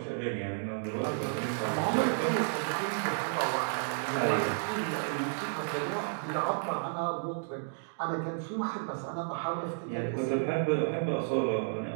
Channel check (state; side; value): silent; left; digital silence